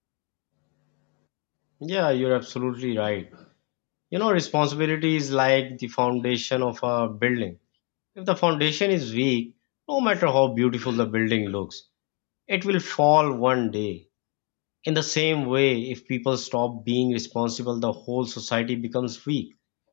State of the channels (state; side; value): quieter; right; 34.8 dB